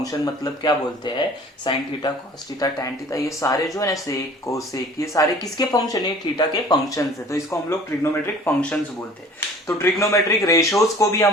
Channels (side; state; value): both; normal; correlation 0.48